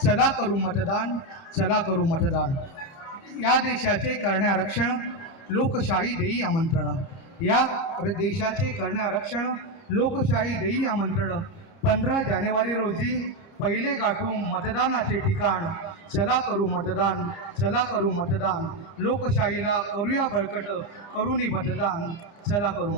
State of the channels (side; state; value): right; late; 29 ms